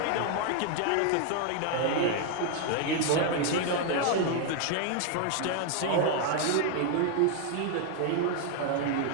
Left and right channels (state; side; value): different; both; correlation 0.01